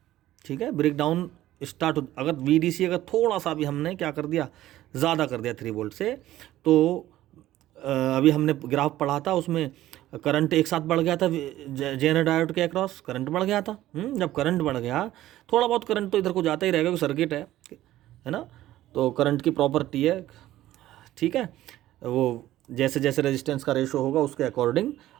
ठीक है, ब्रेक डाउन स्टार्ट हो, अगर VDC अगर थोड़ा सा भी हमने क्या कर दिया, ज़्यादा कर दिया 3 वोल्ट से, तो अभी हमने ग्राफ पढ़ा था उसमें करंट एक साथ बढ़ गया था, जेनर डायोड के अक्रॉस करंट बढ़ गया था। जब करंट बढ़ गया, थोड़ा बहुत करंट तो इधर को जाता ही रहेगा क्योंकि सर्किट है ना, तो करंट की प्रॉपर्टी है। ठीक है, वो जैसे जैसे रेजिस्टेंस का रेशो होगा उसके अकॉर्डिंग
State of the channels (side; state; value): left; quieter; 14.5 dB